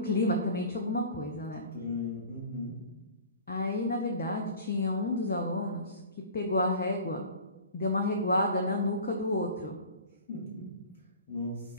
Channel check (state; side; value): inverted; both; correlation -0.41